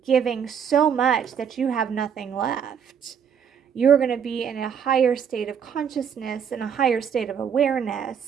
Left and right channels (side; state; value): left; quieter; 7.7 dB